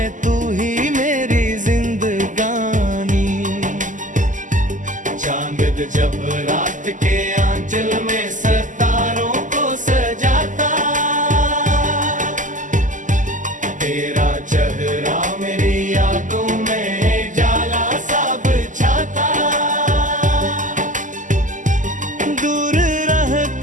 तू ही मेरी जिंदगानी। चांद जब रात के आंचल में सितारों को सजाता, तेरा चेहरा मेरी यादों में जाला सा बिछाता। दूर रह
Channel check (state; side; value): late; left; 0.37 ms